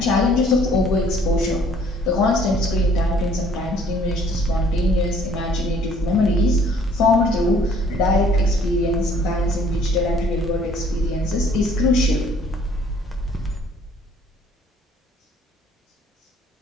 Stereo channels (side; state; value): both; normal; correlation 0.58